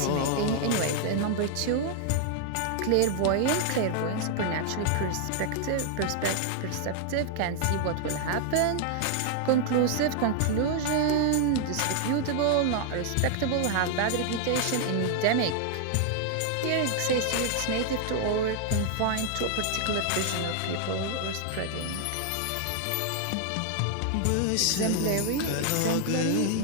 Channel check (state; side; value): different; both; correlation 0.00